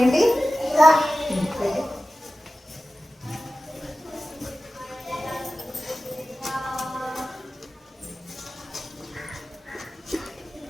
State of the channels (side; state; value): both; normal; correlation 0.95